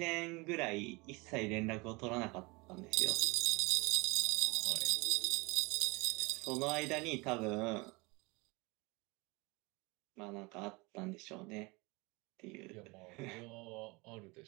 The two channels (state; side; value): quieter; left; 26.1 dB